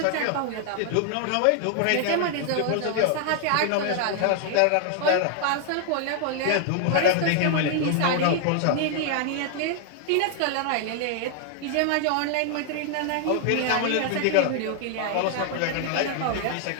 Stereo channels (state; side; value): different; both; correlation 0.00